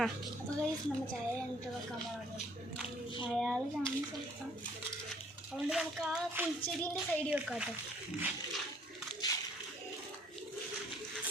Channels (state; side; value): normal; both; correlation 0.61